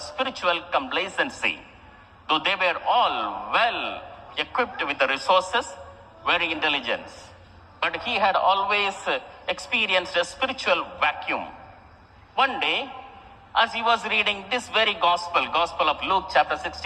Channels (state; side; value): identical; both; correlation 1.00